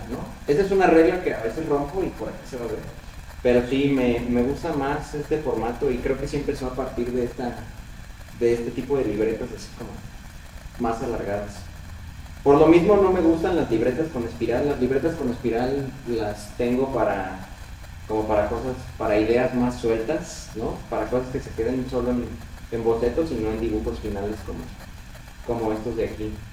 ¿no? Esa es una regla que a veces rompo y por aquí se va a ver. Pero sí, me gusta más este formato, y creo que sí empezó a partir de este tipo de libretas así como más alargadas. Por lo mismo no me gustan las libretas con espiral. Las libretas con espiral las tengo como para cosas, para ideas más sueltas, ¿no? Para cosas que se queden solo en bocetos y no en dibujos finales como estos de aquí.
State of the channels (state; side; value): identical; both; correlation 1.00